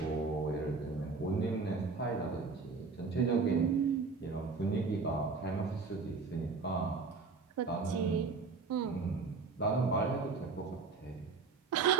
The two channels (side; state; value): left; quieter; 4.6 dB